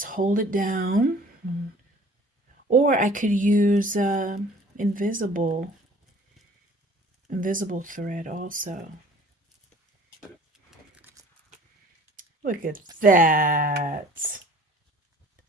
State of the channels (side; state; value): both; normal; correlation 0.50